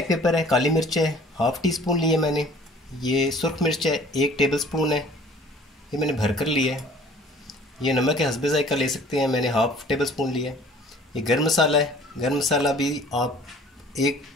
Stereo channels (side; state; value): both; normal; correlation 0.51